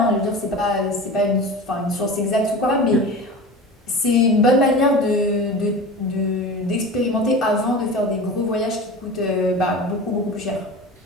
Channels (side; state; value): both; normal; correlation 0.33